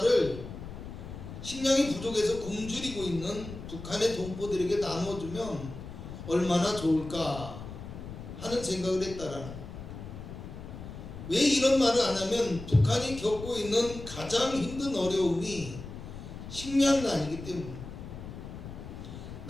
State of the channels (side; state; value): left; noise; rumble, 11 dB below the sound